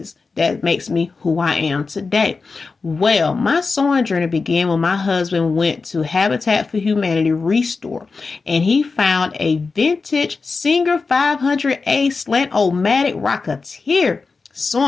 That makes me who I am today. Well, my sewing journey began when my husband went to Habitat for Humanity Restore, and he found a vintage Singer 500A Slant-O-Matic Rocketeer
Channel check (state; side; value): quieter; right; 4.4 dB